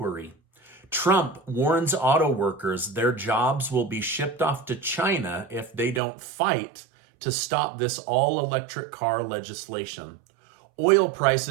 Trump warns auto workers their jobs will be shipped off to China if they don't fight to stop this all-electric car legislation. Oil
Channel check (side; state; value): left; drops out; at 6.0 s